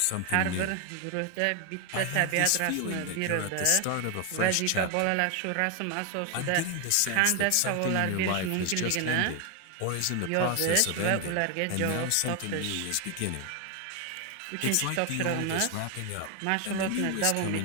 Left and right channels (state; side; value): different; both; correlation 0.01